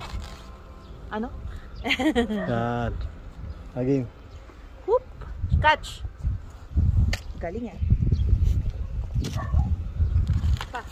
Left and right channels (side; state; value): both; identical; correlation 1.00